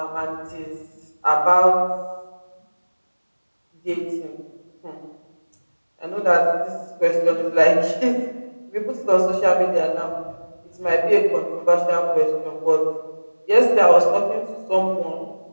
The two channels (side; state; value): both; inverted; correlation -1.00